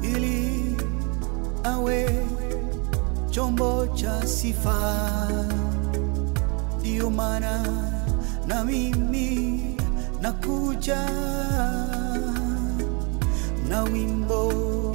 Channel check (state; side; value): quieter; left; 32.5 dB